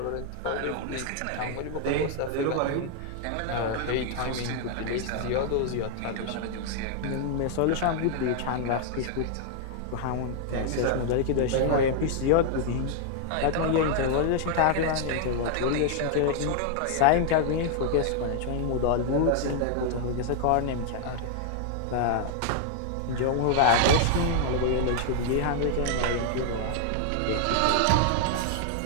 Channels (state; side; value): different; both; correlation 0.00